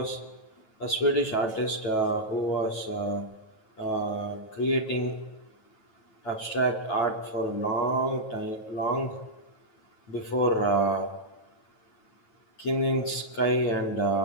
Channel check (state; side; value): late; right; 9.2 ms